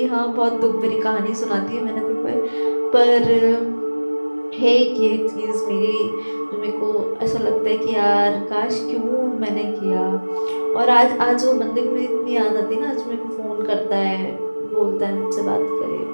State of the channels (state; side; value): inverted; both; correlation -1.00